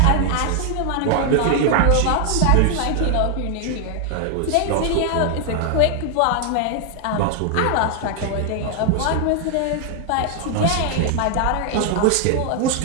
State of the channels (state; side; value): different; both; correlation 0.00